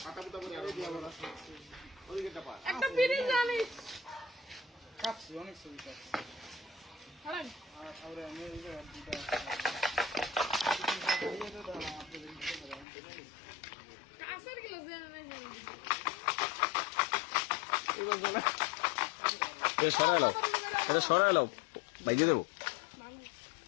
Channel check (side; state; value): right; drops out; at 12.9 s